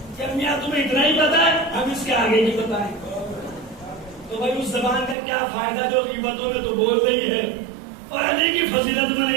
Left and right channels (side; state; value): left; drops out; at 5.2 s